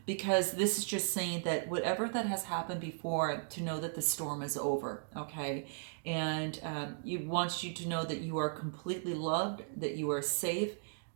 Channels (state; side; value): silent; left; digital silence